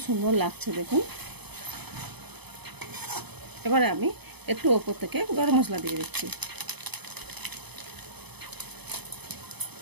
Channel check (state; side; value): late; left; 0.98 ms